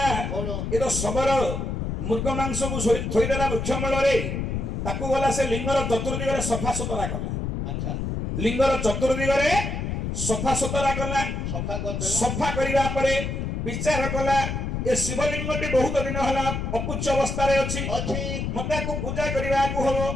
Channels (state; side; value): noise; left; rumble, 2 dB below the sound